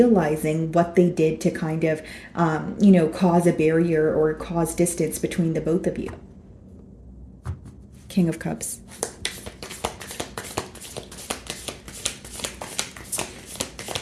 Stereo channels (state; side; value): identical; both; correlation 1.00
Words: what they did to kind of, cause a barrier or cause distance between the both of you. King of Cups.